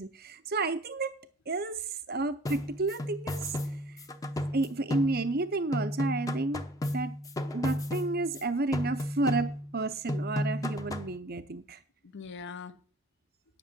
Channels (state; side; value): normal; both; correlation 0.51